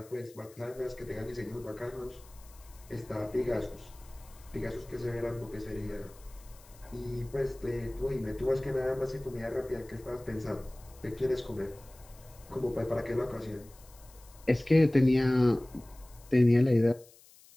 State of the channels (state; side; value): noise; left; hiss, 24 dB below the sound